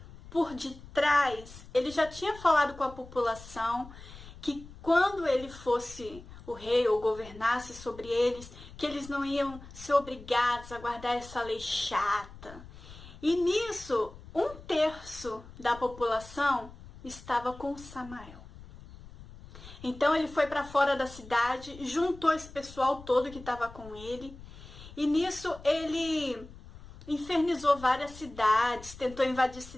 por detrás, ele já tinha falado com a população que quando ele fosse o rei ou governasse sobre eles, que eles não iam ser obrigados a guardar essa lei chata. E nisso, 1/3 da população estava com Samael. Então ele foi para fora da cidade, juntou esse pessoal todo que estava com ele, e nisso ele infernizou várias cidades, tentou invadir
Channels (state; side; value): noise; left; rumble, 17 dB below the sound